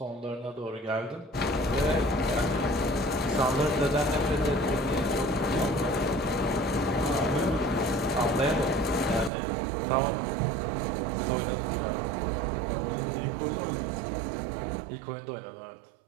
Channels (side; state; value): left; drops out; at 9.3 s